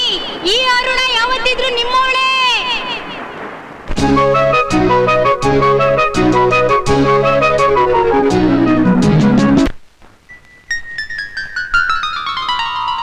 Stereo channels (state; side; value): identical; both; correlation 1.00